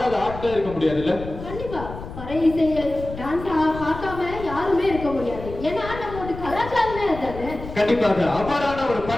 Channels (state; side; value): noise; left; rumble, 11 dB below the sound